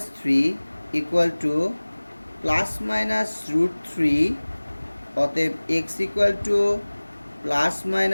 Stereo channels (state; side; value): inverted; both; correlation -1.00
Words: three equal to plus minus root three, অতএব X equal to plus